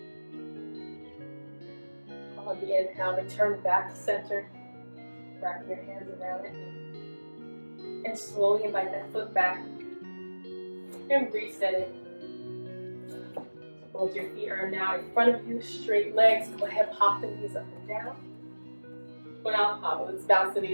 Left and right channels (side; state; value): both; inverted; correlation -1.00